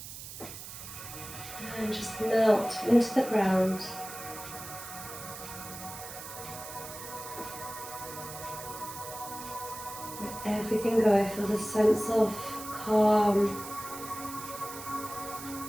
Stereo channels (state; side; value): noise; right; hiss, 11 dB below the sound